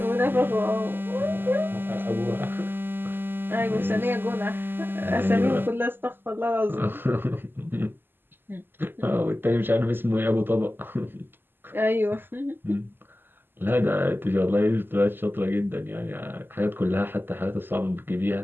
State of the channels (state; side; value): late; left; 0.097 ms